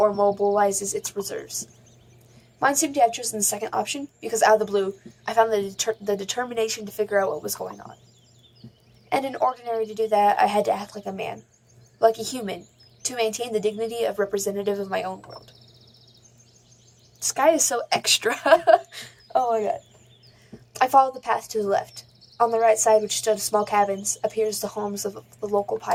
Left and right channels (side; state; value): both; identical; correlation 1.00